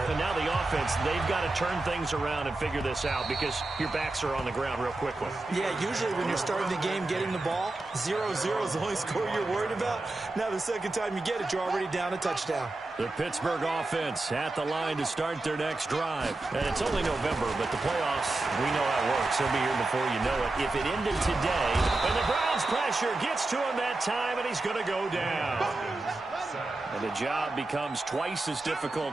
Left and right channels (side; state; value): left; quieter; 3.0 dB